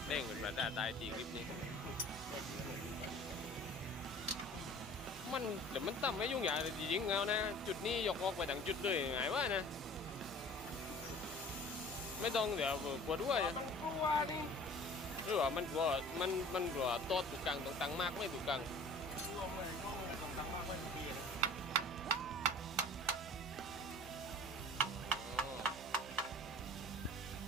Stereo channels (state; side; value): normal; both; correlation 0.45